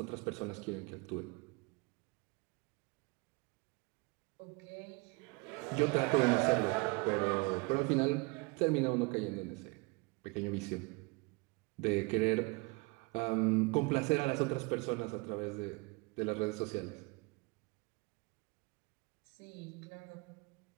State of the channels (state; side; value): quieter; left; 27.9 dB